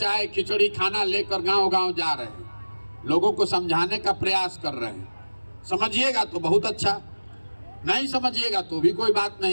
खिचड़ी खाना लेकर गांव-गांव जा रहे हैं, लोगों को समझाने का प्रयास कर रहे हैं। समझिएगा तो बहुत अच्छा, नहीं समझिएगा तो भी कोई बात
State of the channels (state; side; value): inverted; both; correlation -1.00